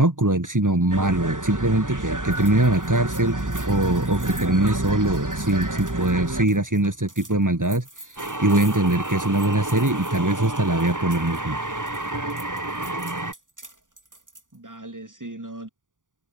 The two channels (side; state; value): left; late; 0.88 ms